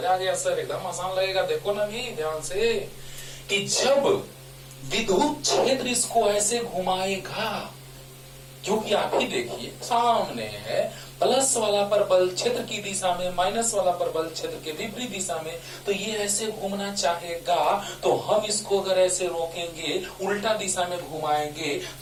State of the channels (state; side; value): identical; both; correlation 1.00